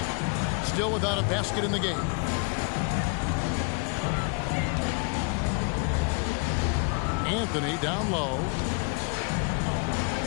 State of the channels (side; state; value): right; quieter; 35.0 dB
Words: Still without a basket in the game. Anthony down low.